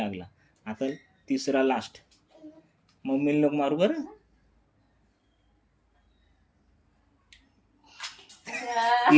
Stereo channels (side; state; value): both; identical; correlation 1.00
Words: आता तिसरा लास्ट. मम्मीला नको मारू बरं.